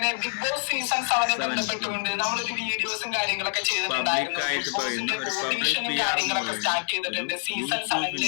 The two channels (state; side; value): silent; right; 61 dB below the other